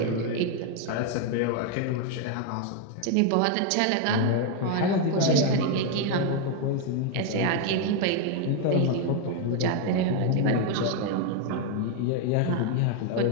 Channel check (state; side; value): different; both; correlation 0.01